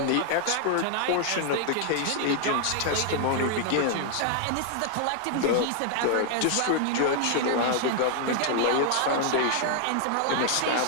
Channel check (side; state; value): both; different; correlation 0.00